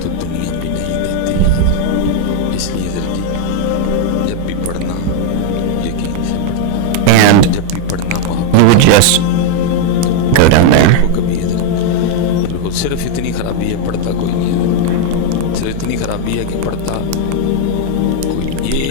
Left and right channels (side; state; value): both; different; correlation 0.00